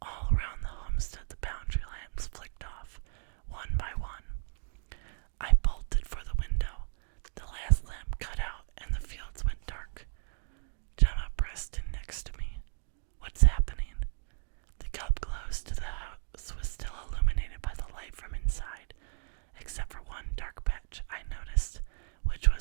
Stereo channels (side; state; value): left; silent; digital silence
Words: All around the homestead the boundary lamps flicked off, one by one. I bolted for the window. The last lamp cut out and the fields went dark. Gemma pressed in next to me. What's happening? The cup close to the house was still illuminated by the light from inside, except for one dark patch I noticed, which